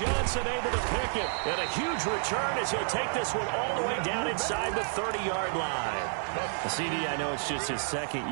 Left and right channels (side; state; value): left; silent; 55 dB below the other